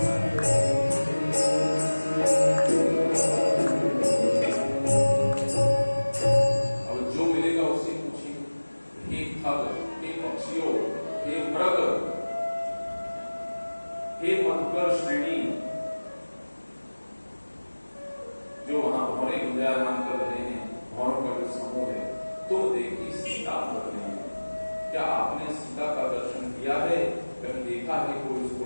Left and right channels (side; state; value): both; inverted; correlation -1.00